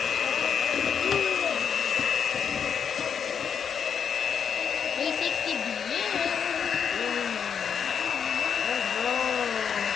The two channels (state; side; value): quieter; right; 7.3 dB